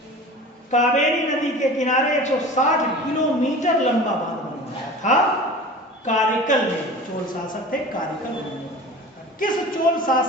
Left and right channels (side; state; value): both; normal; correlation 0.37